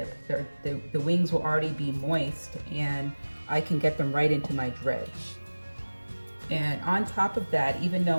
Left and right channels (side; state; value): both; inverted; correlation -1.00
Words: The wings will already be moist and I can get them right into my dredge. And on top of that, even